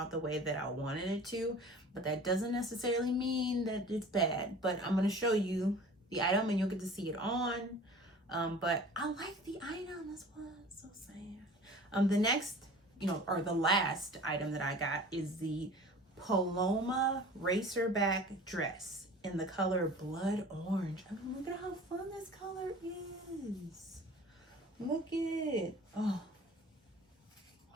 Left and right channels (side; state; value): both; normal; correlation 0.43